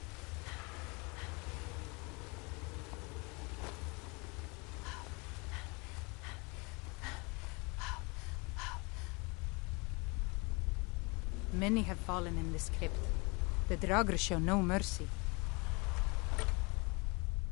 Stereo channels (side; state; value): right; quieter; 29.0 dB